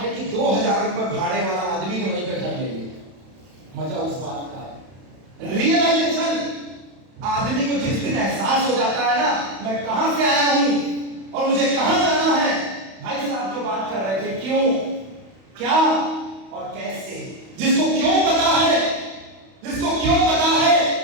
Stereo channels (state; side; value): late; left; 31 ms